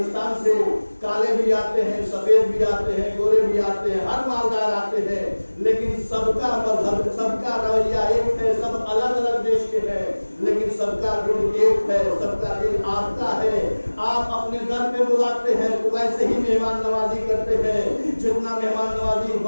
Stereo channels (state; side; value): inverted; both; correlation -1.00